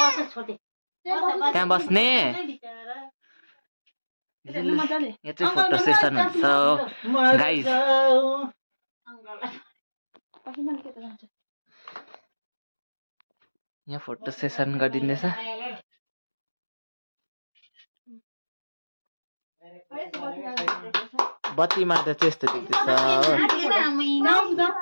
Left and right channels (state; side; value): inverted; both; correlation -1.00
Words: त्यहाँ बस्ने यहाँ चाहिँ फोटो सेसन हुन्छ गाइस। यहाँ फोटो सेसन गरिदिँदैछ। बत्तीमा त त्यस्तो देख्दैछ